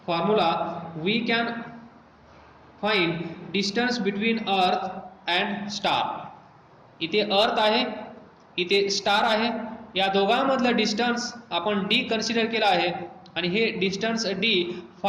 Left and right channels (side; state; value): both; identical; correlation 1.00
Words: formula we can find distance between earth and star. इथे अर्थ आहे, इथे star आहे, या दोघांमधलं डिस्टन्स आपण डी कन्सिडर केलं आहे आणि हे डिस्टन्स डी